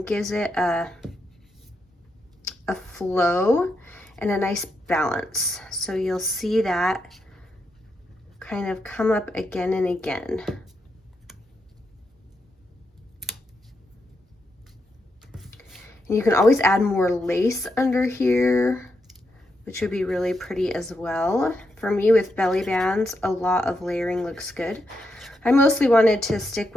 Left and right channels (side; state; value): both; normal; correlation 0.83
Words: gives it a flow and a nice balance. So you'll see that kind of come up again and again. And you can always add more lace under here, which would be really pretty as well. For me, with belly bands, a lot of layering looks good. I mostly wanted to stick